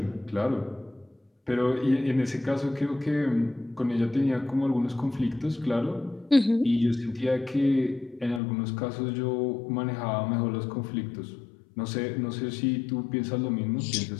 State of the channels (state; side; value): drops out; right; at 8.4 s